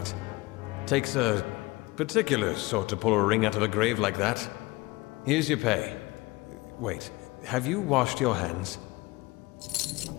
takes a particular sort to pull a ring out of a grave like that. Here's your pay. Wait, have you washed your hands?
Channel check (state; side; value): quieter; right; 21.9 dB